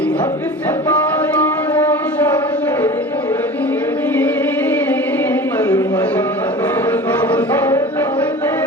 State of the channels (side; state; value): both; normal; correlation 0.37